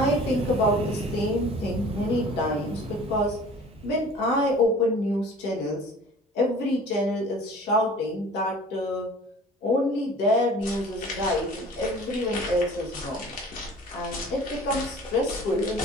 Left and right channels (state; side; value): normal; both; correlation 0.46